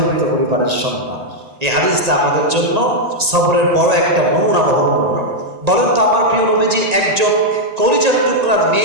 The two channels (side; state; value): left; late; 1.8 ms